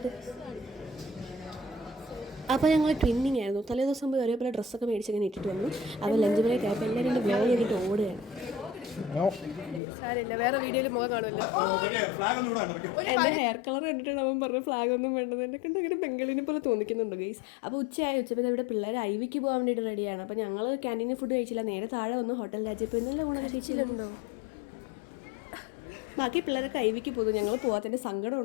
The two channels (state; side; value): drops out; right; at 9.8 s